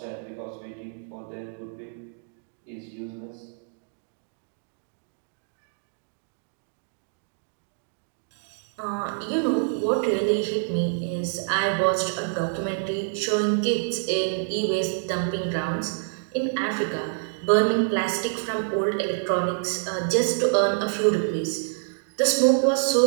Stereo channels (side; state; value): left; silent; digital silence